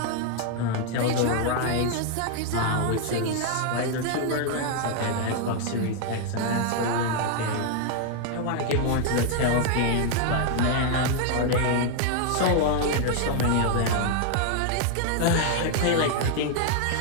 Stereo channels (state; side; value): different; both; correlation 0.00